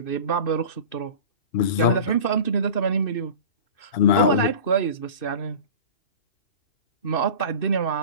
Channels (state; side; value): late; right; 2.6 ms